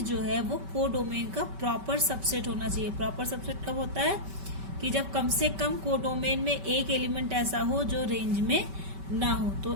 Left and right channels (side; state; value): left; late; 5.2 ms